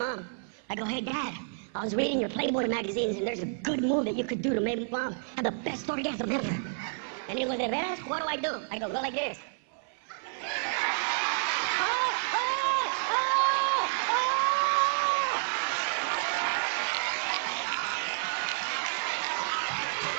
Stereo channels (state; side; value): silent; left; 57 dB below the other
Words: I go, hey Dad, I was reading your Playboy magazines and there's a good move that you could do to make mom have the best orgasm ever. And he goes, de veras, what do? I go, go like this.